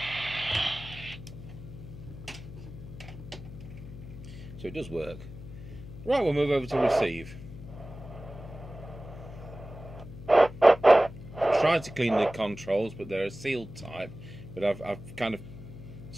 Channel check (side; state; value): left; noise; hum, 13 dB below the sound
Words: So it does work. Right, we'll move over to receive. Tried to clean the controls, but they're a sealed type, but I've kind of